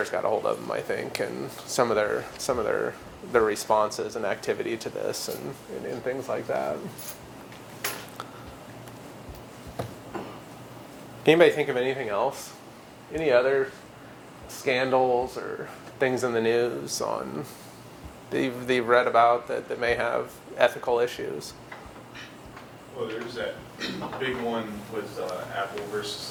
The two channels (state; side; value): identical; both; correlation 1.00